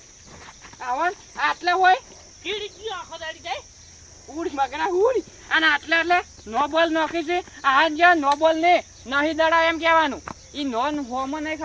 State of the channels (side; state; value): both; identical; correlation 1.00